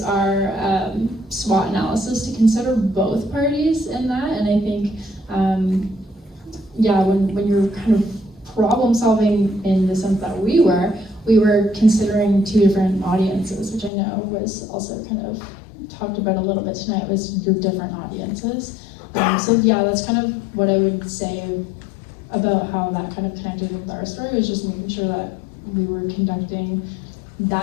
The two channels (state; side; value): drops out; right; at 13.9 s